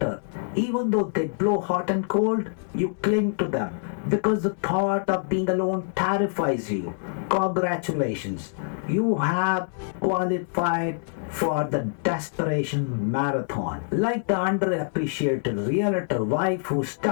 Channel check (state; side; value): silent; right; digital silence